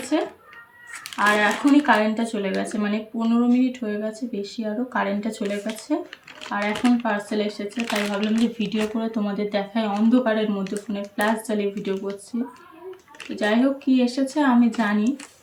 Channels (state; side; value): identical; both; correlation 1.00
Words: আর এখনই কারেন্টটা চলে গেছে, মানে 15 মিনিট হয়ে গেছে, বেশি আরও কারেন্টটা চলে গেছে। আর এখন পার্সেল এসেছে, তাই ভাবলাম যে ভিডিও করে তোমাদের দেখায়। অন্ধকারের মধ্যে ফোনে ফ্ল্যাশ জ্বালিয়ে ভিডিও করছি। তো যাই হোক, কী এসেছে আমি জানি,